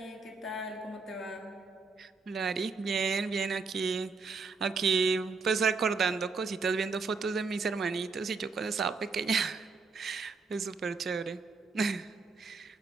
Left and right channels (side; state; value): left; quieter; 4.6 dB